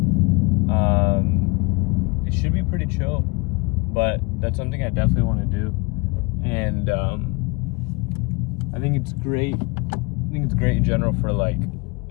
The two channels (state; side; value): quieter; right; 27.9 dB